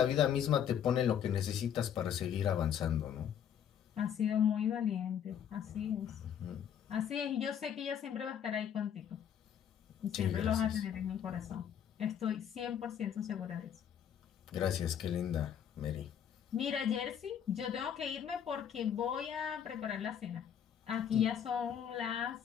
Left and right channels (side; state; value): right; quieter; 8.9 dB